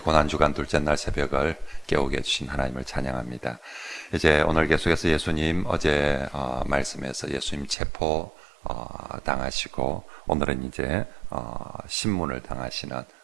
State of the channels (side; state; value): left; drops out; at 7.8 s